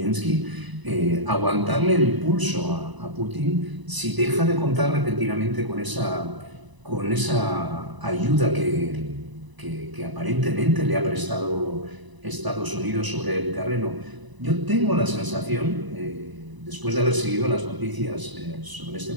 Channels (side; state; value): left; late; 1.0 ms